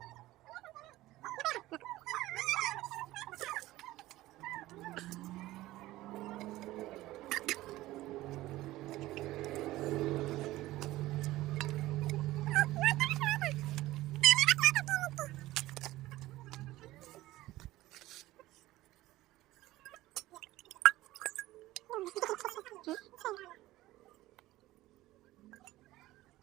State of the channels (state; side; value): quieter; left; 16.9 dB